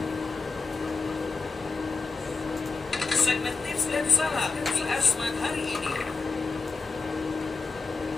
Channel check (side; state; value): right; quieter; 4.3 dB